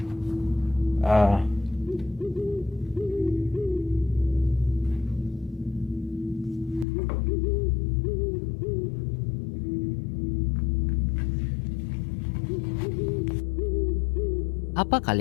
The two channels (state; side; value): drops out; right; at 6.9 s